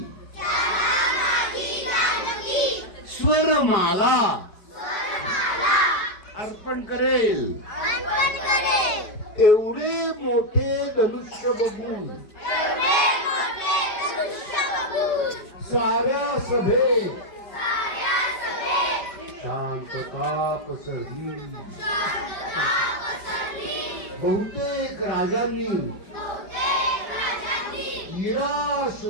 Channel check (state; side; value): late; right; 5.1 ms